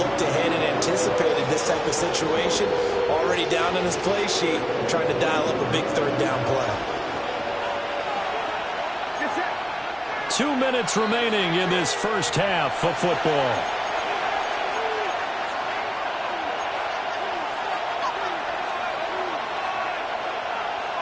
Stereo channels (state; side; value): identical; both; correlation 1.00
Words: ahead and anticipated this type of situation. Already down in his play sheet, trying to dial up a big third down play. 2 minutes remaining in this first half of football.